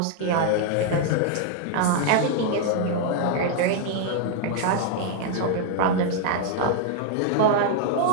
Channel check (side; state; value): both; different; correlation 0.00